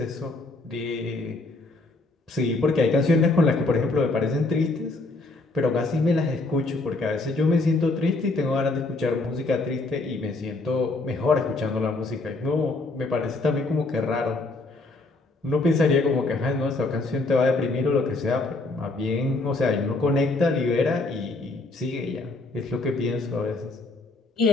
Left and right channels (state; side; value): quieter; right; 3.2 dB